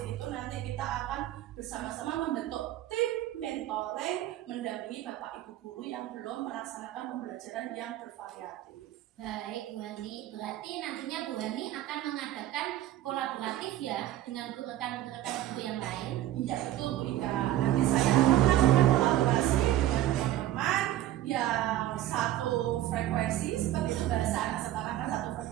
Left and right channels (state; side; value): quieter; left; 13.6 dB